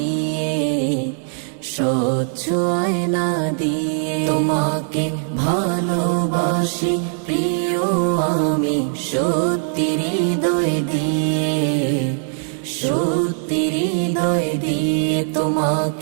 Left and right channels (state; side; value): silent; left; digital silence